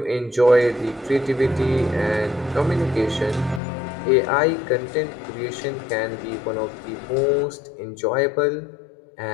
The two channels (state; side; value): drops out; right; at 3.6 s